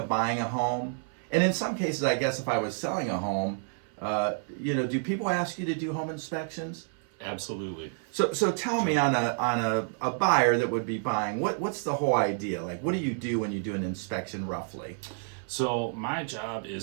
buying a home, and in some cases, I guess if I was selling a home, do people ask you to do home inspections? Absolutely. So tell me, on a buyer that would be buying, what's the whole idea? Like, what do you do when you do an inspection roughly? So my job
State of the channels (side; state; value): left; silent; 58 dB below the other